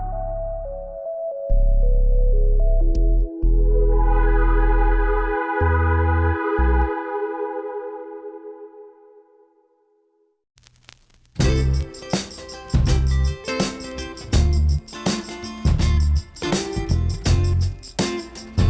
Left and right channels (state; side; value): identical; both; correlation 1.00